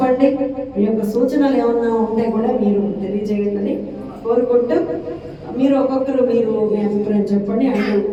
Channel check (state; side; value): identical; both; correlation 1.00